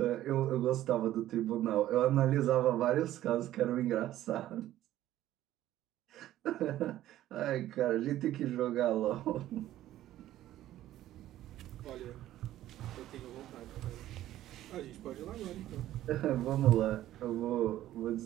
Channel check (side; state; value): left; quieter; 13.6 dB